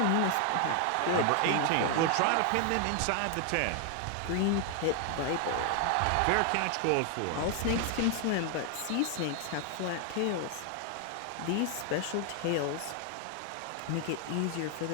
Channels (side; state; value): both; different; correlation 0.00